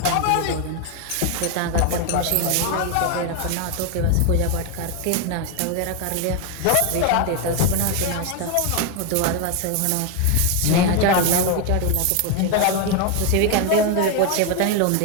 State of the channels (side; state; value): both; different; correlation 0.01